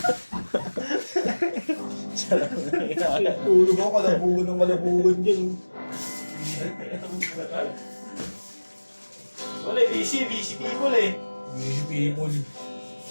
Tulog ako, kalabugan ng kalabugan dyan. Wala, busy people eh. Busy people.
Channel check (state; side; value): inverted; both; correlation -1.00